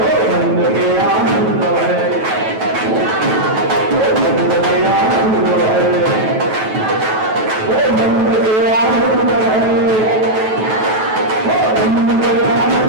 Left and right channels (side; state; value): left; late; 9.2 ms